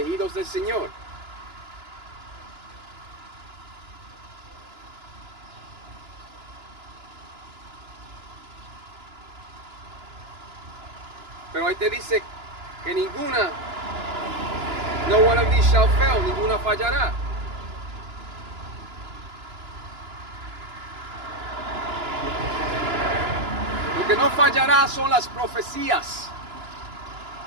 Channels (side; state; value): left; late; 2.9 ms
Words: del Señor. Pero ahí te dice que ninguna, no one of these shall fail, ninguna fallará. Lo que no fallará son las profecías.